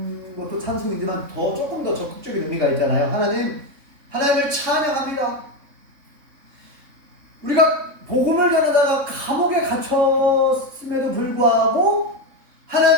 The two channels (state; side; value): late; left; 3.6 ms